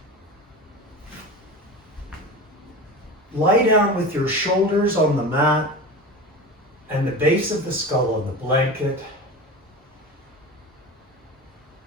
Lie down with your shoulders on the mat and the base of the skull on the blanket.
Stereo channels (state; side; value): normal; both; correlation 0.29